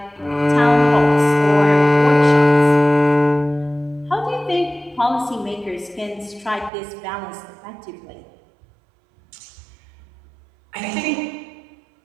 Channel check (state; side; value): drops out; left; at 6.7 s